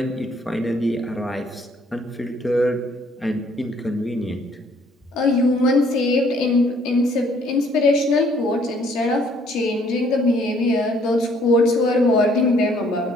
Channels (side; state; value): both; normal; correlation 0.62